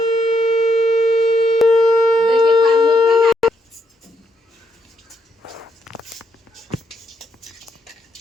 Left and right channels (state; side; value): normal; both; correlation 0.77